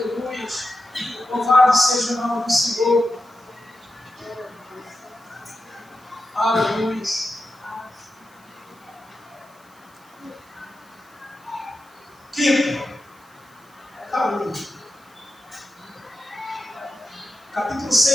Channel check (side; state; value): right; noise; hiss, 29 dB below the sound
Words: Louvado seja o nome do Senhor. Aleluia. Quinto. Aleluia. Capítulo